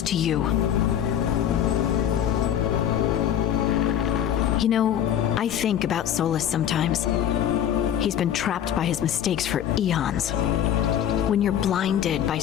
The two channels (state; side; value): quieter; right; 10.1 dB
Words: to you. You know, I think about Solus sometimes. He's been trapped by his mistakes for eons. When you're blinded by